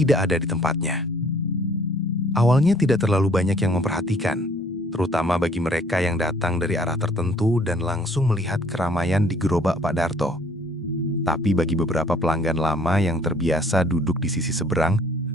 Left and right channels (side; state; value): both; normal; correlation 0.59